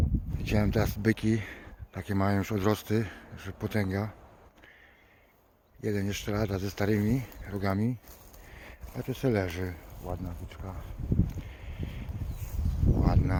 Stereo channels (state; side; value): identical; both; correlation 1.00